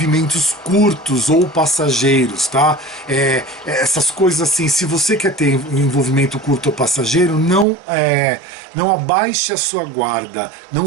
curtos ou passageiros, tá? Essas coisas assim, se você quer ter um envolvimento curto ou passageiro, não abaixe a sua guarda, não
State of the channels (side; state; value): left; drops out; at 7.7 s